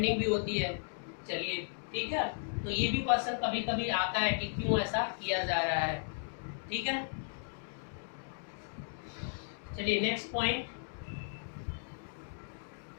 भी होती है। चलिए ठीक है, तो ये भी क्वेश्चन कभी कभी आता है कि क्यों ऐसा किया जा रहा है। ठीक है, चलिए नेक्स्ट पॉइंट।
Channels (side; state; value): right; silent; digital silence